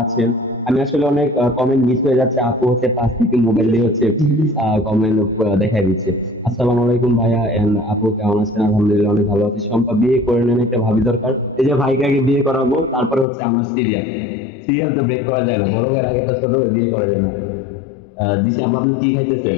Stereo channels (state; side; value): drops out; right; at 13.2 s